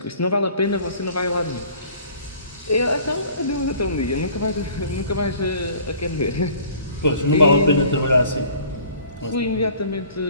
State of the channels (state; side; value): inverted; both; correlation -0.50